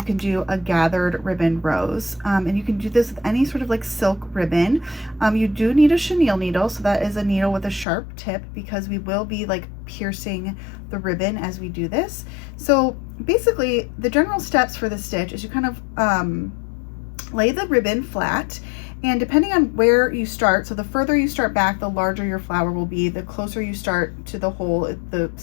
can do a gathered ribbon rose. And you can do this with any sort of like silk ribbon. You do need a chenille needle, so that is a needle with a sharp tip because we will be like piercing the ribbon as we do this. So basically the general steps for this stitch is you kind of lay the ribbon flat, and depending on where you start, so the further you start back, the larger your flower will be. The closer you start to the hole, the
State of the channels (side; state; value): right; drops out; at 7.9 s